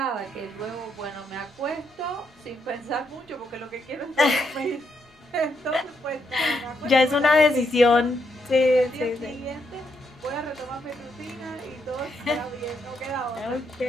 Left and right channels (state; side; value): normal; both; correlation 0.78